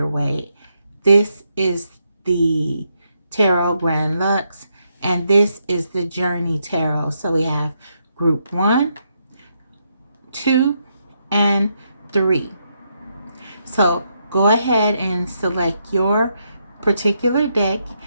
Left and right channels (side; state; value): both; inverted; correlation -0.79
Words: This is the Tarot Grand Lux, and this is the Journey Tarot. So we have group 1, 2, and 3. So go ahead and select your particular deck